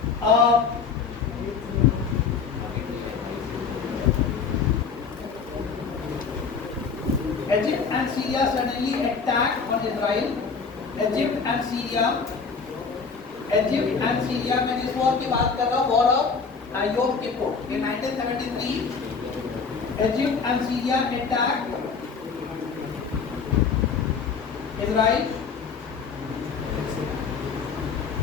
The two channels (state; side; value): quieter; right; 5.4 dB